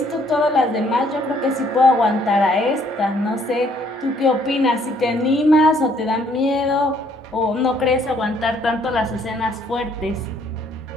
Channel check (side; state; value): both; normal; correlation 0.65